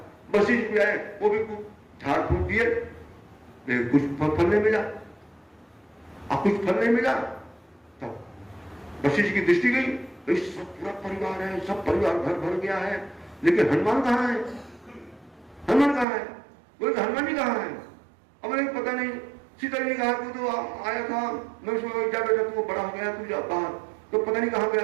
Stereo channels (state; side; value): drops out; left; at 16.1 s